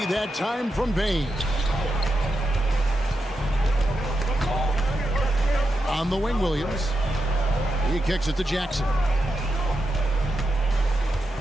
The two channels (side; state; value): both; normal; correlation 0.87